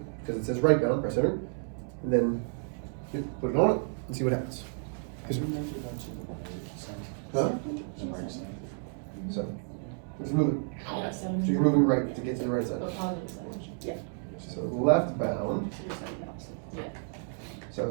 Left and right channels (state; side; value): silent; left; 57 dB below the other